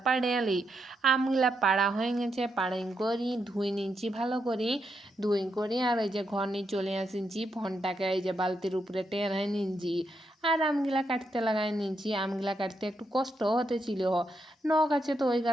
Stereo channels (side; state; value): both; normal; correlation 0.82